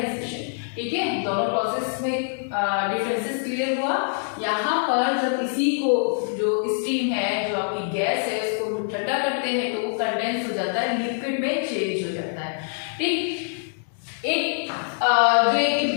ठीक है, दोनों प्रोसेस में डिफरेंसेस क्लियर हुआ। यहाँ पर जब इसी को जो स्टीम है, जो आपकी गैस है, उसको ठंडा करते हैं तो वो कंडेंस हो जाता है, लिक्विड में चेंज हो जाता है। ठीक, एक जो एक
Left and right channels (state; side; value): silent; right; digital silence